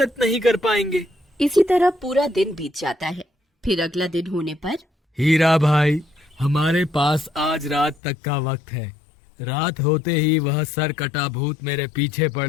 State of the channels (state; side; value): drops out; right; at 8.0 s